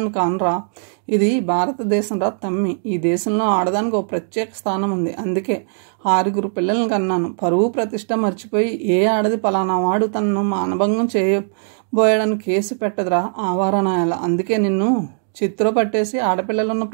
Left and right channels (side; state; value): left; silent; digital silence